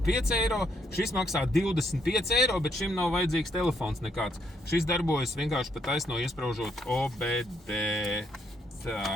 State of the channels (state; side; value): normal; both; correlation 0.73